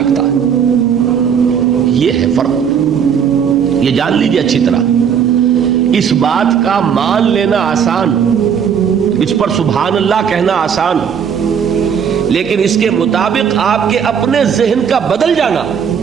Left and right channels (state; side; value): quieter; left; 7.6 dB